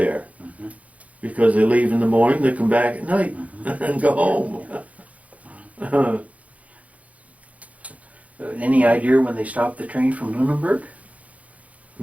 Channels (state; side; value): late; left; 0.068 ms